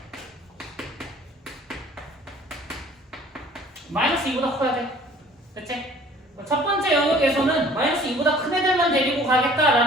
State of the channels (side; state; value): both; normal; correlation 0.52